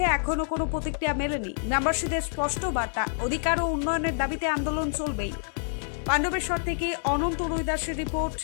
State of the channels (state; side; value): silent; right; digital silence